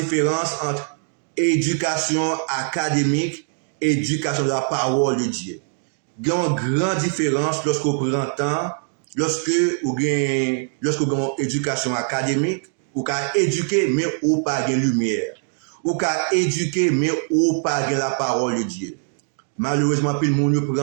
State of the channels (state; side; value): silent; left; digital silence